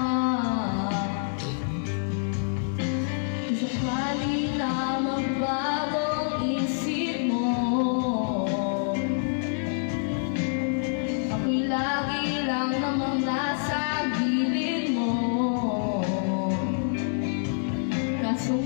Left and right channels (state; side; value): silent; right; 60 dB below the other